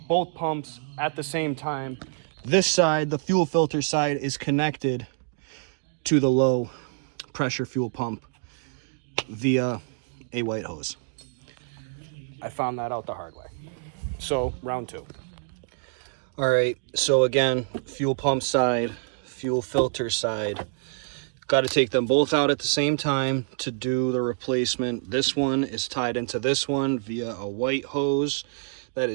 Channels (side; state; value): left; silent; digital silence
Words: both pumps at the same time. This side, the fuel filter side, is connected to the low pressure fuel pump via a white hose. I found that out the hard way. So, round 2. All right, so again, fuel pump side, fuel filter side. Got to take them both out at the same time to do the replacement. This one is tied into this one via a white hose that